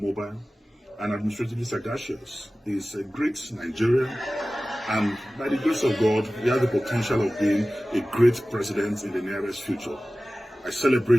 and administratively sagacious. He's a great Nigerian, and by the grace of God, he has the potential of being a great president in the nearest future. I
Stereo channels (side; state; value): both; normal; correlation 0.97